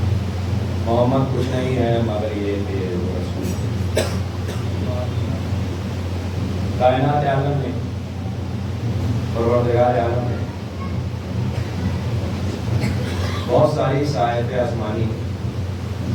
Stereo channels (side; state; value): both; identical; correlation 1.00